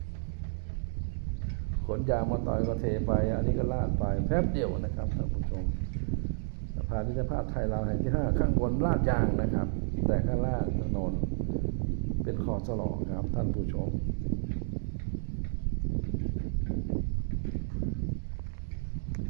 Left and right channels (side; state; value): left; silent; digital silence